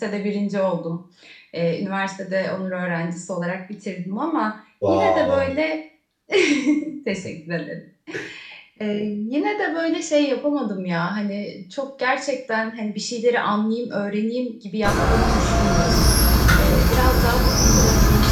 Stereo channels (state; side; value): identical; both; correlation 1.00